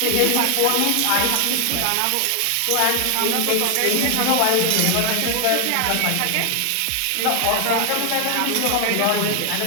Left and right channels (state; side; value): different; both; correlation 0.00